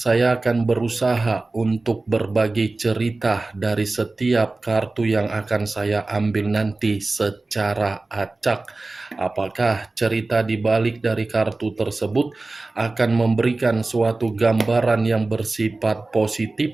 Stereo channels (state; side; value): quieter; left; 3.3 dB